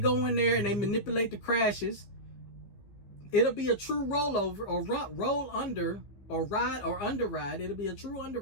in there and they manipulate the crashes. It'll be a true rollover or roll under or ride or underride. It'll be a true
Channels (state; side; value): late; right; 15 ms